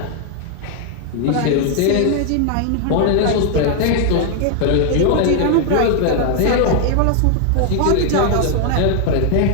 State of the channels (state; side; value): different; both; correlation 0.00